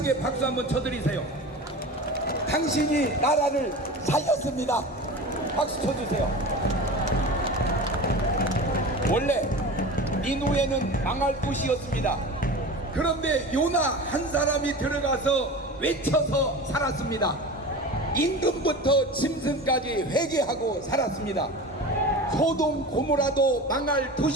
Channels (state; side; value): normal; both; correlation 0.32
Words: 박수 한번 쳐드리세요. 당신이 나라를 살렸습니다. 박수 쳐주세요. 원래 니누에는 망할 곳이었습니다. 그런데 요나 한 사람이 들어가서 외쳐서 살았습니다. 임금부터 짐승까지 회개하고 살았습니다. 소돔 고모라도 망할